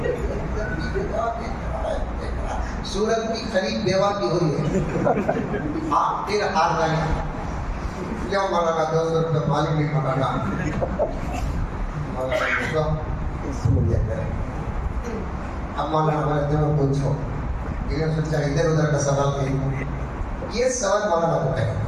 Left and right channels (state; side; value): identical; both; correlation 1.00